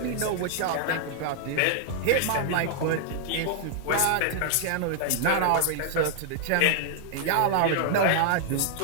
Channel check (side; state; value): both; different; correlation -0.01